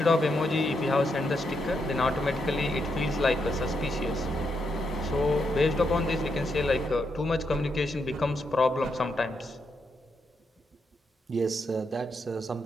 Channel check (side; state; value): both; normal; correlation 0.81